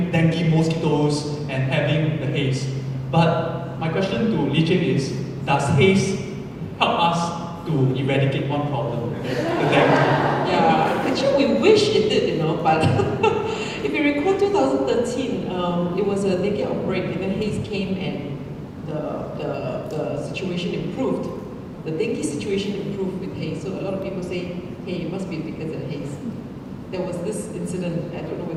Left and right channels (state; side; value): identical; both; correlation 1.00